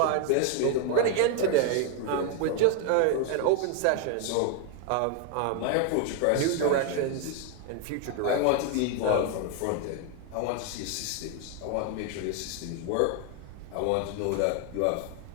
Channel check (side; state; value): both; different; correlation 0.01